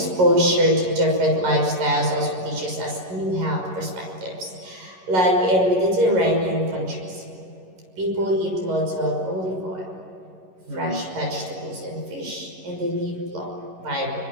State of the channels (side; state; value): left; late; 11 ms